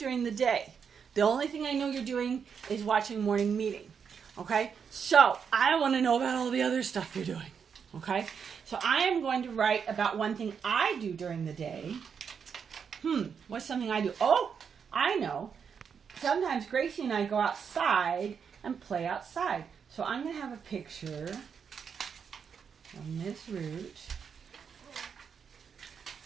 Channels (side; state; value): left; quieter; 6.7 dB